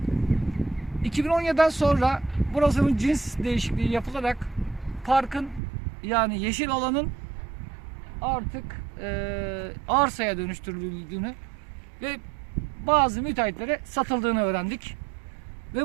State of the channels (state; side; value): drops out; left; at 5.6 s